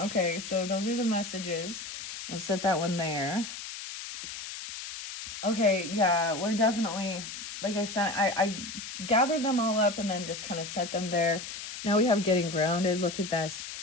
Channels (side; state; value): left; noise; hiss, 9 dB below the sound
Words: so those are the messages. I'll set that one there. Okay, yeah, we're definitely, like I said, I gathered them all up and then just kind of set them there. Now we have getting grounded. Look at this.